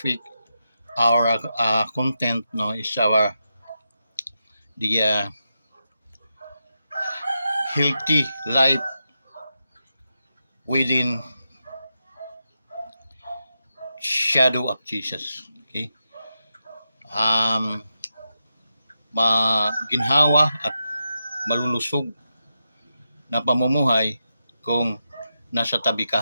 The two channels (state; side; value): inverted; both; correlation -0.87